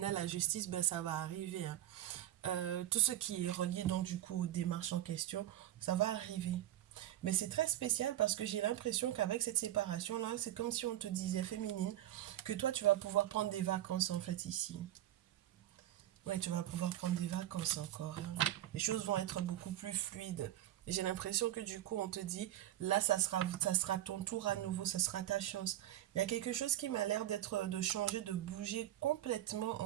la justice, ça va arriver. Hein. Tout ce qui est relié, donc, du coup, aux démarches en question, ça va arriver. Mais c'est très spécial parce que j'ai l'impression qu'avec cette séparation-là, c'est comme si on te disait, féminine, que toi, tu vas pouvoir prendre des vacances, en fait, ici. Ouais, tu vas pouvoir prendre des vacances encore. Hein. Les choses vont être beaucoup plus fluides. Et j'ai l'impression que du coup, on te dit, là, ça sera ton tour à nouveau, ça sera ta chance. Il y a quelque chose qui m'a l'air de changer, de bouger complètement,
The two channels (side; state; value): left; quieter; 13.4 dB